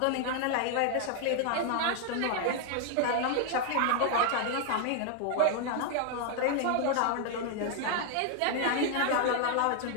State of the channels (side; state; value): both; different; correlation 0.00